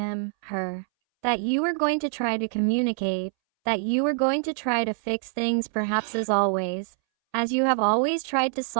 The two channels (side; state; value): left; silent; 61 dB below the other